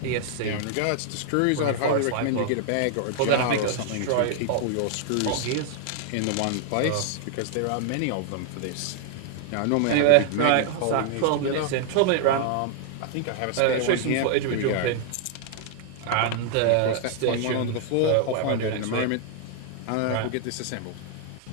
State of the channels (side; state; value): both; different; correlation 0.00